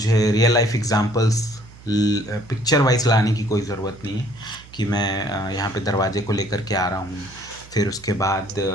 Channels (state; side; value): noise; right; hum, 21 dB below the sound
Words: real life examples picture wise लाने की कोई ज़रूरत नहीं है कि मैं यहाँ पे दरवाजे को लेकर के आ रहा हूँ, फिर उसके बाद